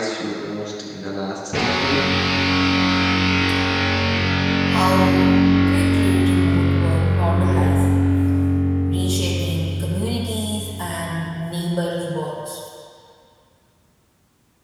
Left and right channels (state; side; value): identical; both; correlation 1.00